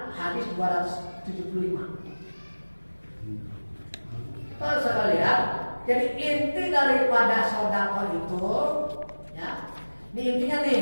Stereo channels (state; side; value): inverted; both; correlation -1.00